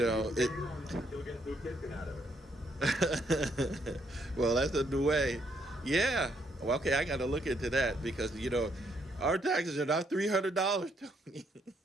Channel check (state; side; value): normal; both; correlation 0.72